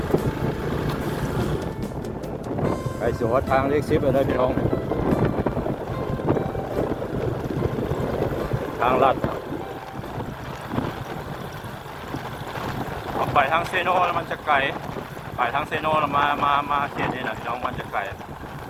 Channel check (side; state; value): both; identical; correlation 1.00